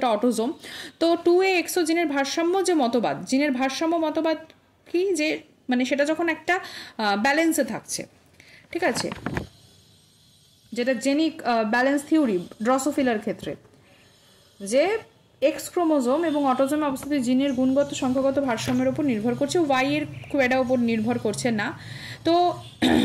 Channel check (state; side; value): identical; both; correlation 1.00